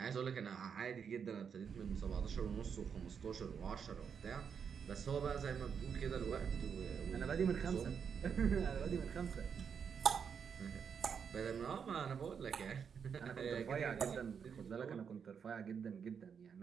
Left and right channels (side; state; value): left; quieter; 6.9 dB